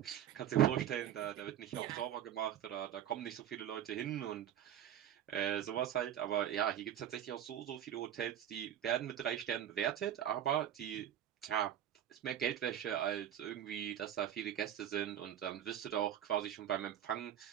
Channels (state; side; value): quieter; left; 10.5 dB